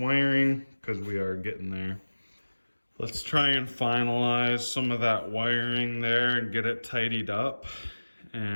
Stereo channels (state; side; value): inverted; both; correlation -1.00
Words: because we are getting there. Let's try and finalize some of that wiring there and get it tidied up.